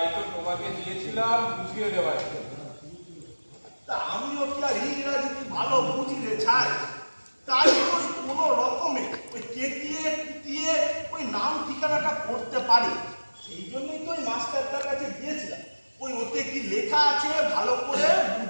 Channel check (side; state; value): both; inverted; correlation -1.00